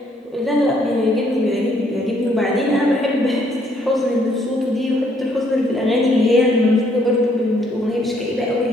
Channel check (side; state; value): both; normal; correlation 0.68